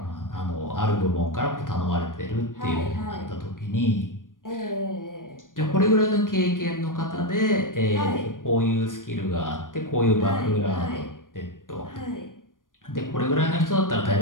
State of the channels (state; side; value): late; right; 0.89 ms